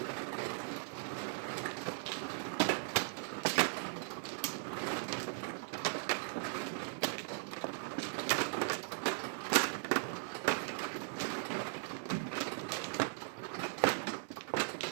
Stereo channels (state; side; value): silent; left; 52 dB below the other